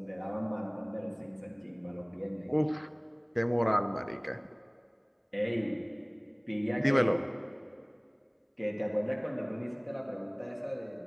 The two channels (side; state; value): both; identical; correlation 1.00